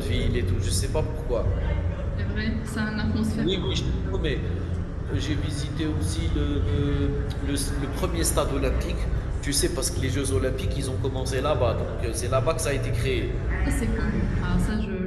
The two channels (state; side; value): identical; both; correlation 1.00